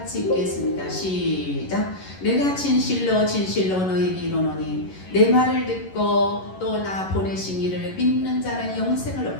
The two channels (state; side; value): late; right; 11 ms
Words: 읽겠습니다. 시작. 내가 진실로 진실로 너에게 이르노니 내 말을 듣고 또 나 보내신 이를 믿는 자는 영생을